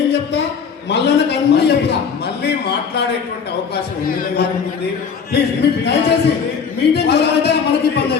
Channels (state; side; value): quieter; right; 6.3 dB